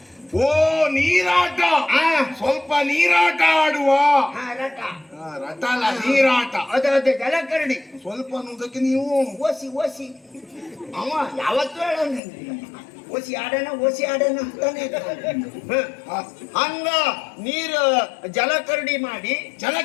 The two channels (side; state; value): right; drops out; at 12.2 s